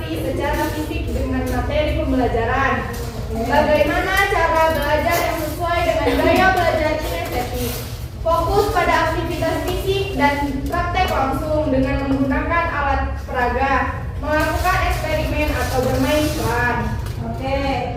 secara fisik dengan materi pembelajaran. Bagaimana cara belajar yang sesuai dengan gaya belajar kinestetik? Fokus pada aktivitas fisik dan praktek langsung dengan menggunakan alat peraga, melakukan eksperimen atau bermain peran. Oke,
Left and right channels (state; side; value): identical; both; correlation 1.00